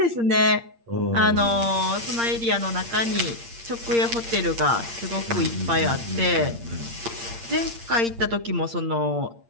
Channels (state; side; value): late; left; 8.7 ms